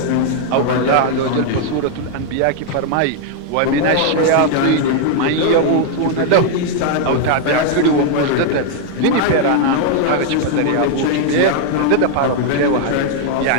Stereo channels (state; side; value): different; both; correlation 0.00